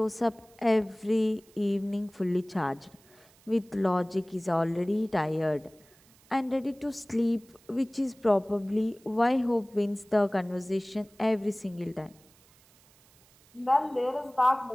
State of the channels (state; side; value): noise; right; hiss, 29 dB below the sound